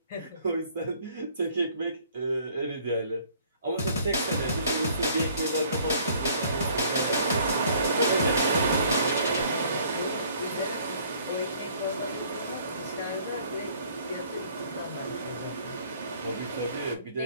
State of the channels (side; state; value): both; inverted; correlation -0.58